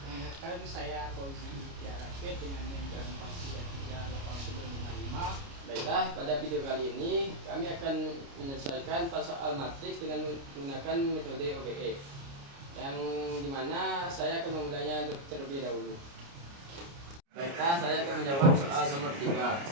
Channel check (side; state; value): left; late; 29 ms